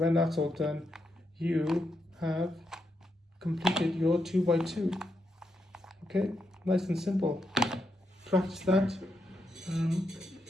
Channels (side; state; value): both; normal; correlation 0.82